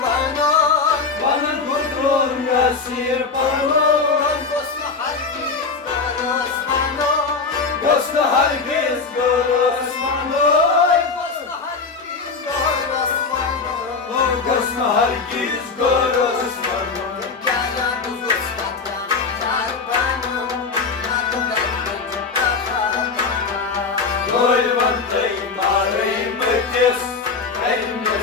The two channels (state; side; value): quieter; right; 4.6 dB